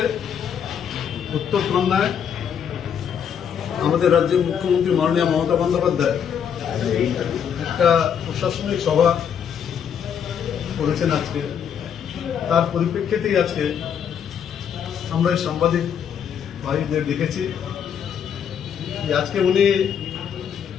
উত্তরকন্যায় আমাদের রাজ্যের মুখ্যমন্ত্রী মাননীয় মমতা বন্দ্যোপাধ্যায় একটা প্রশাসনিক সভা করেছেন আজকে। তার পরিপ্রেক্ষিতেই আজকে আমরা এই সাংবাদিক ভাইদের দেখেছি যে আজকে উনি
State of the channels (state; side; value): quieter; right; 8.0 dB